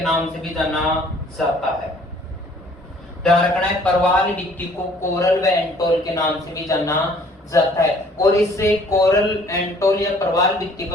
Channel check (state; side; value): normal; both; correlation 0.57